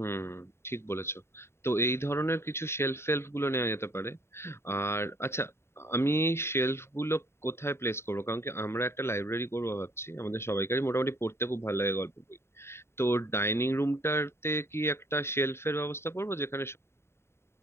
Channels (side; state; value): right; late; 0.12 ms